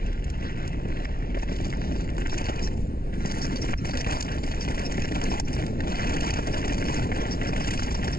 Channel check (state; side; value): late; right; 0.44 ms